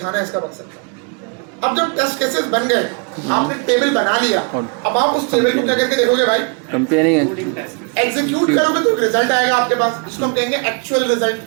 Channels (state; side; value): quieter; left; 35.4 dB